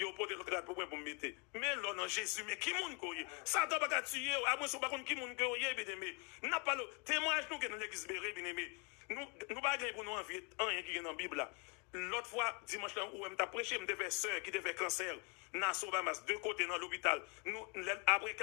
y a pas de rate pour me mettre. Mais là, non, Jésus, mais qui moun koye? Ça doit pas tuer, à moins pas qui moun koye, bien aimé. N'a pas le témoignage nous que dans l'église béré, bien aimé. Nous pas pour nous envier rien qui est dans la Bible là. L'autre fois, dimanche là, où je prêché, je devais sœur qui devait cancer, dans Sobamas, deux côtés dans l'hôpital. Après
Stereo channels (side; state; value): right; quieter; 33.7 dB